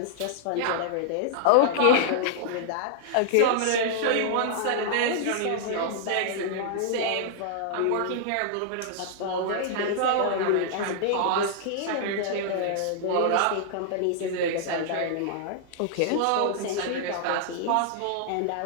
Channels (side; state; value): both; different; correlation -0.01